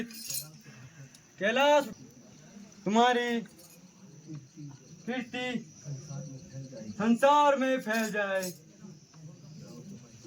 कैलाश तुम्हारी कीर्ति संसार में फैल जाए।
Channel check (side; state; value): both; identical; correlation 1.00